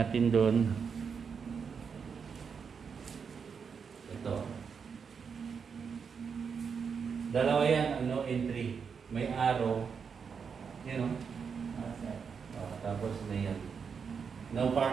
doon. Ito. Dalawa yan, ang no entry. May arrow. Yan, no? Tapos na yan. No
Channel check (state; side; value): quieter; left; 6.2 dB